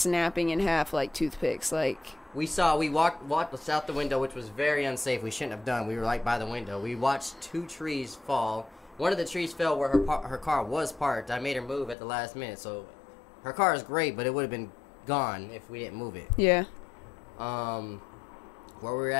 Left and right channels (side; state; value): right; drops out; at 12.0 s